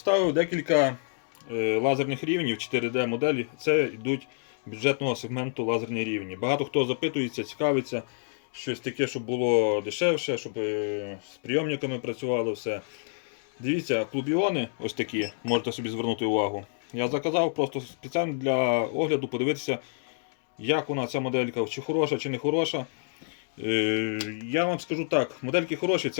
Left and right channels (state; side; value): silent; right; digital silence